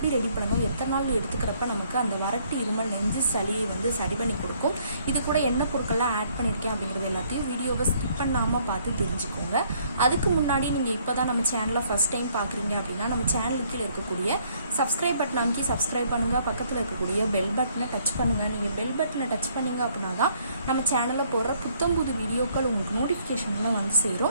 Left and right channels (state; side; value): inverted; both; correlation -0.65